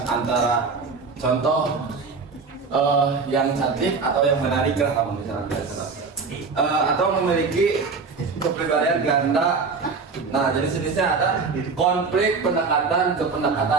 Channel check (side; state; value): left; quieter; 4.7 dB